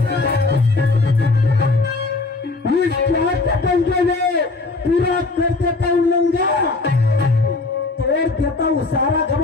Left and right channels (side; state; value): right; quieter; 3.5 dB